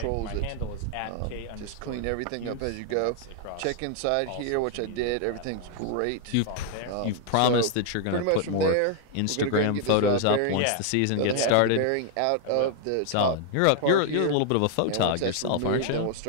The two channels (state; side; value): different; both; correlation 0.00